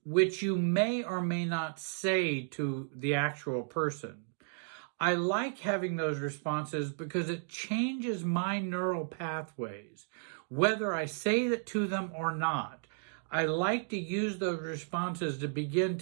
which you may or may not say to the actual person, I like having those responses because it changes my neural pathways, whether I say that to them or not. I like to use those responses to begin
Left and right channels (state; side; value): silent; left; digital silence